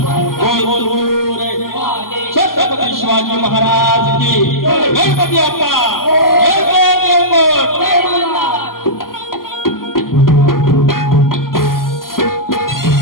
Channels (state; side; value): late; right; 0.92 ms